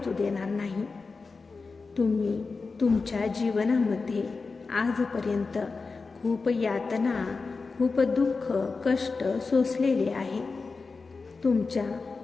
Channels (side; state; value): right; quieter; 4.3 dB